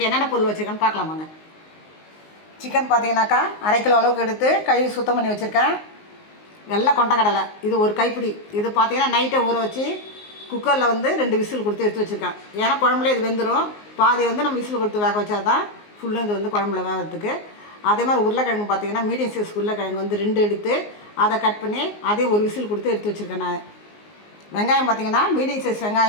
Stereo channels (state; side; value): late; right; 19 ms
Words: என்னென்ன பொருள் வச்சுருக்கேன்னு பார்க்கலாமாங்க. சிக்கன் பார்த்தீங்கன்னாக்கா 1/2 கிலோ அளவுக்கு எடுத்து கழுவி சுத்தம் பண்ணி வச்சுருக்கேன். வெள்ளை கொண்டக்கடலை இது ஒரு கைப்பிடி. இது பார்த்தீங்கன்னா நைட்டை ஊற வச்சு குக்கரில் 2 விசில் கொடுத்து எடுத்து வச்சுருக்கேன். ஏன்னா குழம்புல இது வெந்துடும். பாதி நம்ம விசில் கொடுத்து வேக வச்சா தான் ஃபுல்லும் இது குழம்புல வேகிறதுக்கு. அதே மாதிரி உருளைக்கிழங்கு பார்த்தீங்கன்னா மீடியம் சைஸ் உருளைக்கிழங்கு 2 எடுத்து அதை கட் பண்ணி அதே ஒரு விசில் கொடுத்து எடுத்து வச்சுருக்கேன் நான். வெங்காயம் பார்த்தீங்கன்னா மீடியம் சைஸ்